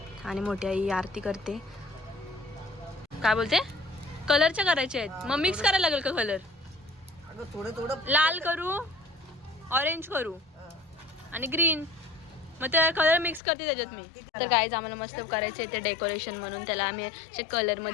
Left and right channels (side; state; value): right; drops out; at 13.4 s